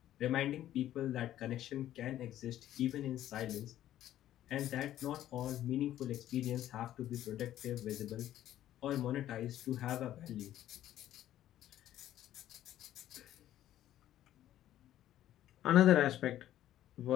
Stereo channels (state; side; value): quieter; right; 12.6 dB